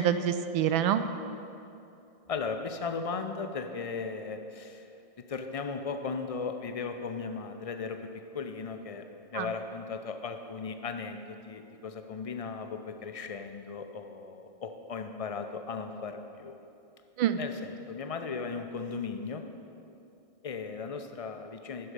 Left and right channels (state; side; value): late; right; 1.6 ms